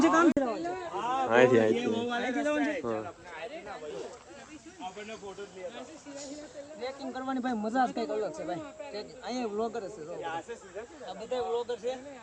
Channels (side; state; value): both; identical; correlation 1.00